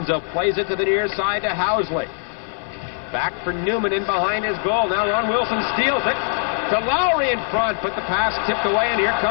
plays it to the near side to Housley. Back for Newman in behind his goal. Now Ron Wilson steals it to Lowry in front, but the pass tipped away, and here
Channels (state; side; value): silent; right; 58 dB below the other